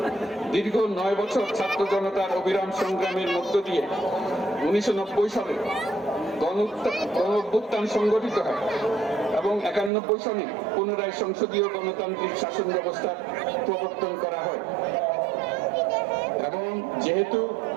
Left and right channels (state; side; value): drops out; left; at 9.9 s